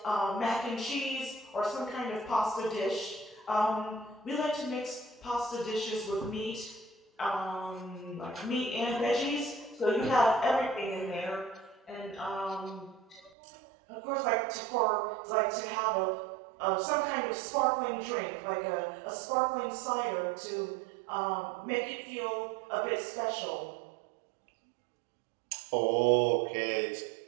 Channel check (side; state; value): left; drops out; at 13.3 s